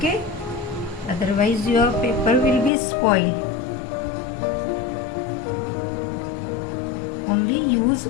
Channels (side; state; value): right; drops out; at 2.7 s